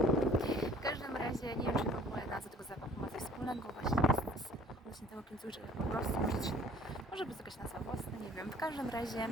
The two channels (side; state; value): both; normal; correlation 0.53